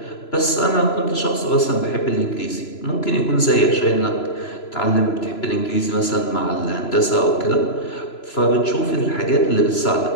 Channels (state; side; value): late; right; 3.0 ms